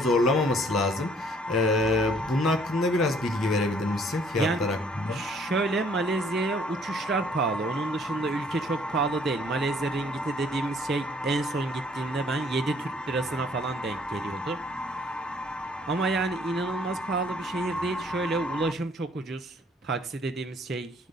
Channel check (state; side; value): normal; both; correlation 0.61